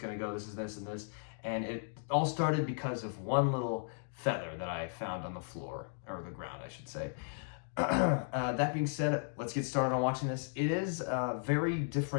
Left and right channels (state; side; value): silent; right; digital silence